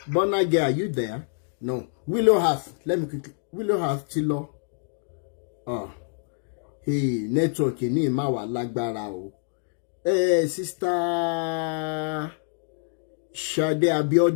Bonage, are you there? No. Willow Heart, let me quickly. Willow Heart ti lọ. Network ní ìmá wà lágbára o. Sister Ṣadé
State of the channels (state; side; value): silent; right; digital silence